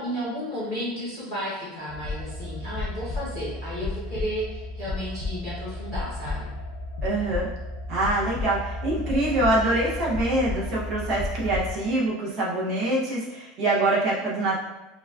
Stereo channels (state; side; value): normal; both; correlation 0.43